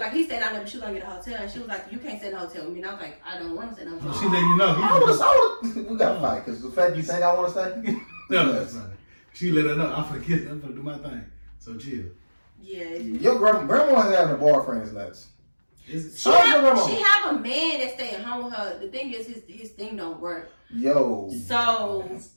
Like he stayed down there, but she was gonna get a hotel, and she was like, "You can't stay in a hotel with me." And I was like, "I don't want to stay in a hotel." She letting you know. We gotta fight because the fact you think I want to stay. No, that's funny. She let her know. I'm gonna do my thing. So chill. Yeah. Your grandma having a boyfriend is nuts. She have a man that stay at home with her. The thing is, his thing don't work. Yo. So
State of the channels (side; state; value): both; inverted; correlation -1.00